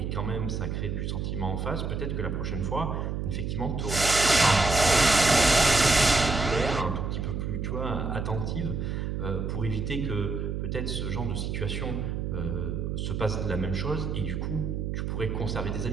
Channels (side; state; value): right; noise; hum, 2 dB below the sound